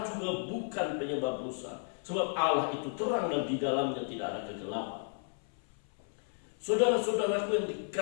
juga bukan penyebab dosa, sebab Allah itu terang dan di dalamnya tidak ada kegelapan. Saudara-saudaraku yang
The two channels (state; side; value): silent; right; 56 dB below the other